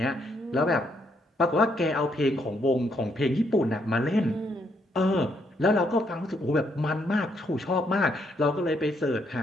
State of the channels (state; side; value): normal; both; correlation 0.74